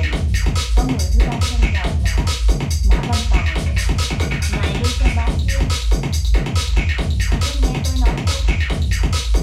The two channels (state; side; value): identical; both; correlation 1.00